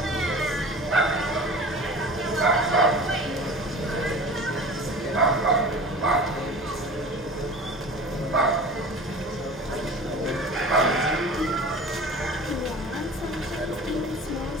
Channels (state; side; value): normal; both; correlation 0.39